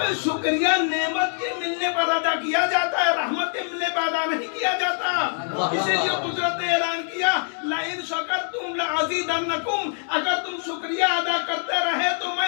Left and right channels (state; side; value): silent; right; 63 dB below the other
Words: शुक्रिया नेमत के मिलने पर अदा किया जाता है, रहमत के मिलने पर अदा नहीं किया जाता। इसीलिए कुदरत ने ऐलान किया, लाइन शकरतुम लअज़ीदन्नकुम, अगर तुम शुक्रिया अदा करते रहे तो